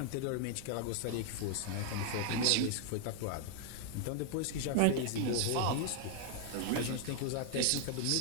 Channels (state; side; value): different; both; correlation 0.00